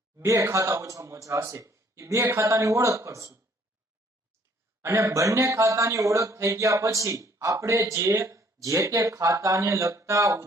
બે ખાતા ઓછામાં ઓછા હશે, એ બે ખાતાની ઓળખ કરશું અને બંને ખાતાની ઓળખ થઈ ગયા પછી આપણે જે તે ખાતાને લગતા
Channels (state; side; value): normal; both; correlation 0.61